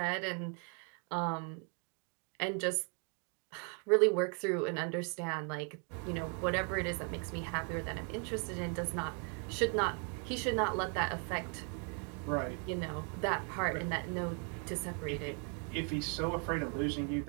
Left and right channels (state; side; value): quieter; left; 39.5 dB